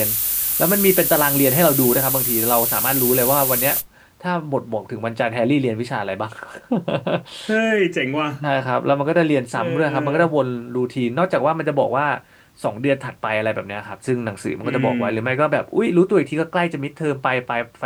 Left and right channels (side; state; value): both; identical; correlation 1.00